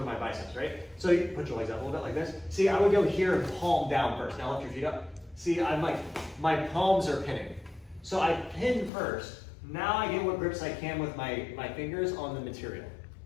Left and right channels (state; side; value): drops out; right; at 8.9 s